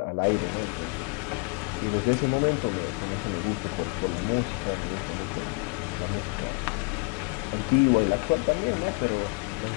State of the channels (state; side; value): quieter; right; 35.0 dB